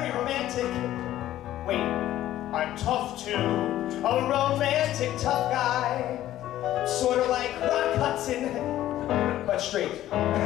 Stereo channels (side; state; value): right; quieter; 13.4 dB